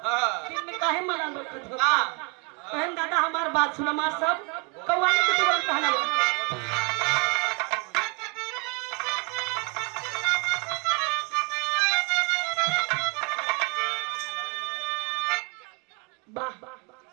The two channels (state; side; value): quieter; left; 32.9 dB